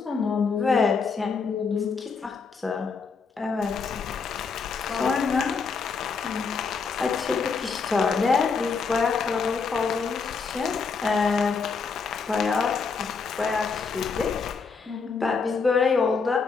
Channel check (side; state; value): right; quieter; 5.1 dB